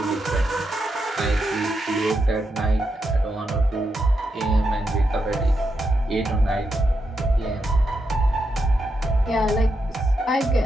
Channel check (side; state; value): both; normal; correlation 0.84